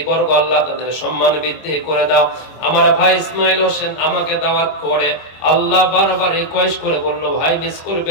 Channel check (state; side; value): late; right; 25 ms